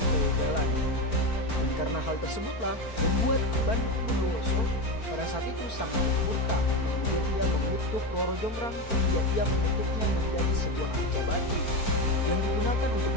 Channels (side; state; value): right; late; 4.4 ms